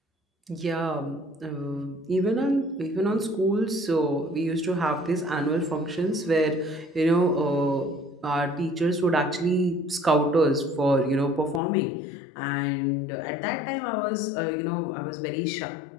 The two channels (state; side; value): drops out; right; at 11.6 s